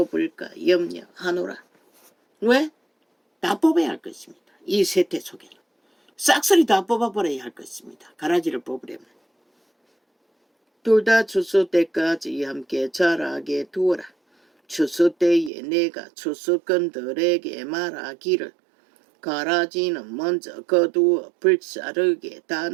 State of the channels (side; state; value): left; drops out; at 15.5 s